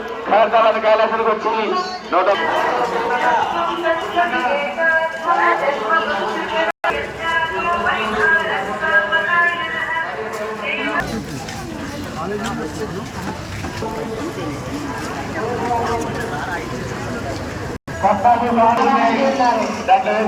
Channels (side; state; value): both; identical; correlation 1.00